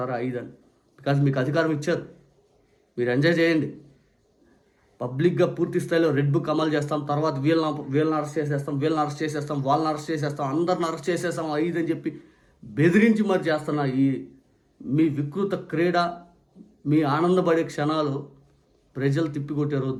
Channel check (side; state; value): both; identical; correlation 1.00